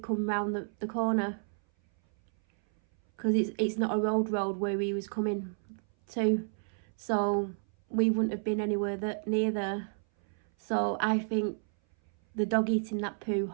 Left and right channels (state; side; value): silent; left; 57 dB below the other